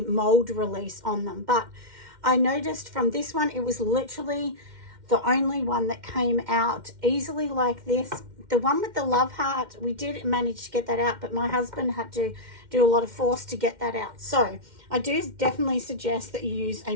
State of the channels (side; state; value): left; late; 2.1 ms